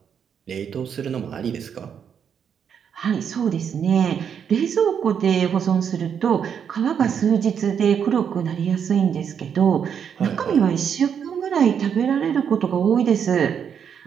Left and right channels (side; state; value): left; quieter; 7.7 dB